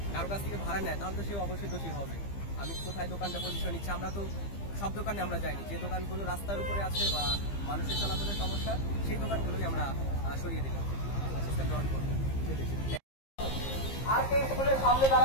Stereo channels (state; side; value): late; right; 15 ms